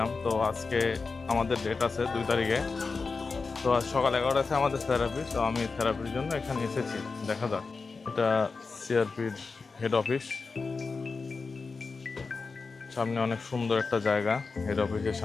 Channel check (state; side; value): quieter; right; 4.4 dB